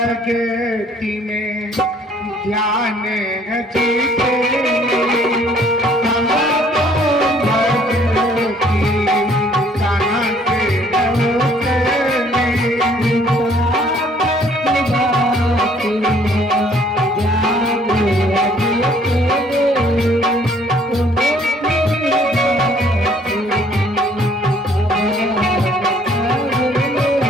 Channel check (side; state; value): both; normal; correlation 0.60